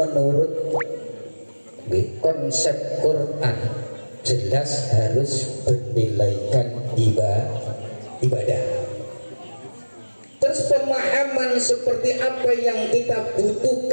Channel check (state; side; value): inverted; both; correlation -1.00